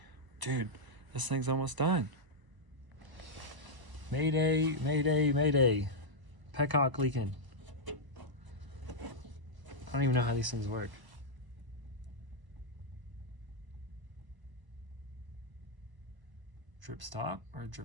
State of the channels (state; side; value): late; left; 1.0 ms